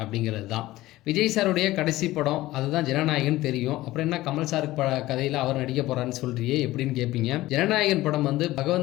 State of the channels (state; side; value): quieter; right; 17.1 dB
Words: அப்படிங்கிறது தான். விஜய் சாருடைய கடைசி படம் அதுதான் ஜனநாயகன் தெரியும். அப்புறம் என்ன கமல் சார் கதையில் அவர் நடிக்க போறாருன்னு சொல்றியே எப்படின்னு கேட்பீங்க. ஜனநாயகன் படம் வந்து